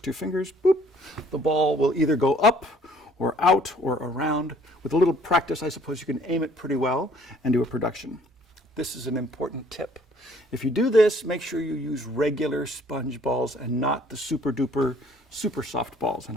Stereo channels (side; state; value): both; normal; correlation 0.59